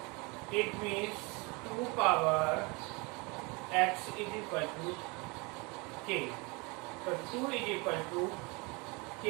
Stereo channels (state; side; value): quieter; left; 28.0 dB